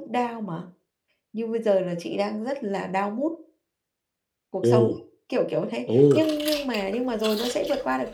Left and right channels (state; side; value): identical; both; correlation 1.00